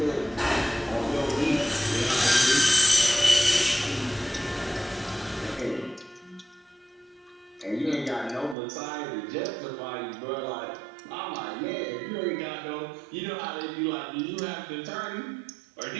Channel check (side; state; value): left; drops out; at 8.6 s